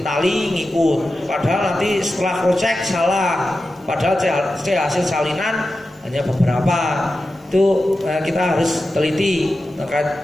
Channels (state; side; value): normal; both; correlation 0.92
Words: tali ngikut. Padahal nanti setelah crosscheck salah. Padahal C hasil salinan hanya beberapa. Itu kita harus teliti